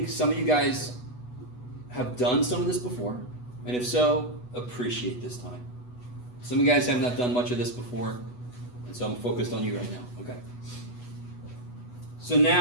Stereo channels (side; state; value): right; late; 8.1 ms